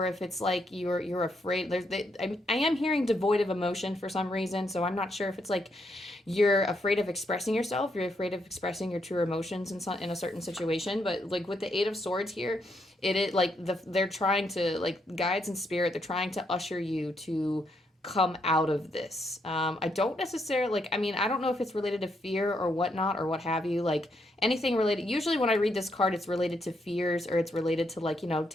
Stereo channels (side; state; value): both; normal; correlation 0.77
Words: if it's like you're afraid. I am hearing devoid of emotion for some reason. So I'm not sure if it's like you're afraid of expressing yourself, you're afraid of expressing your true emotions in a certain situation. But like with the Eight of Swords here, it like they're trying to, like, guides and spirit, they're trying to usher you to come out of this. I don't necessarily, like, I mean, I don't know if it's related to fear or whatnot or what have you, like anything related. Usually when I read this card, it's related to fears, or it's related to, like, you know,